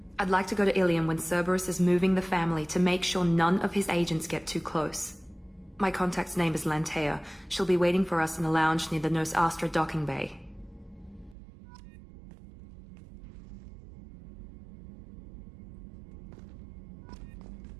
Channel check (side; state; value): left; drops out; at 11.4 s